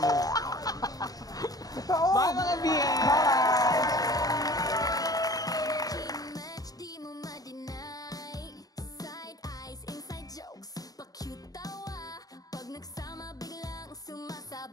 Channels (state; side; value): late; right; 0.18 ms